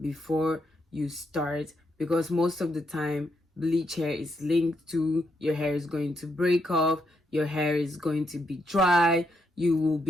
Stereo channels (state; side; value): normal; both; correlation 0.79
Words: you start, because most of the time bleach hair is linked to your hair is going to break off, your hair is going to be dry, you will